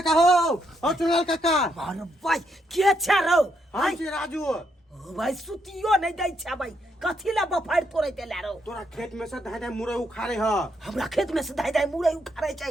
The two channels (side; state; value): both; normal; correlation 0.77